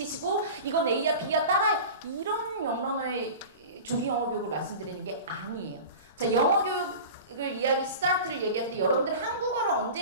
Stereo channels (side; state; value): both; inverted; correlation -0.34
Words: 이건 A야 B야 따라해. 이런 영러너의 조기 영어 교육을 말씀드리는 게 아니에요. 자, 영어 교육 이야기 스타트를 얘기할 때 여러분들